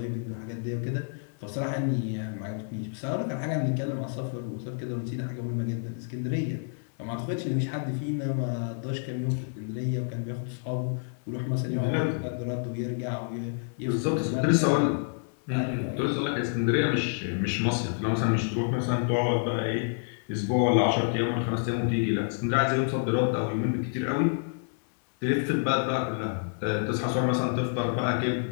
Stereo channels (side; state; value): right; silent; 59 dB below the other